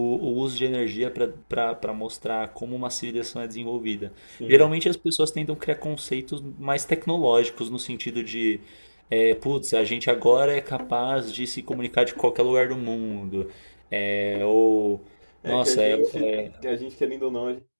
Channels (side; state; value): both; inverted; correlation -1.00